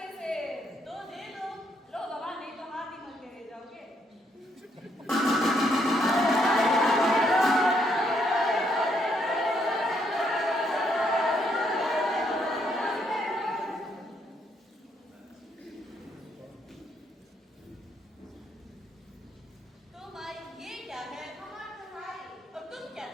से। तो दे दो। लो बाबा, नहीं तो हाथ ही मल के ले जाओगे। तो भाई, ये क्या है? और तुम क्या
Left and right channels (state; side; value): normal; both; correlation 0.73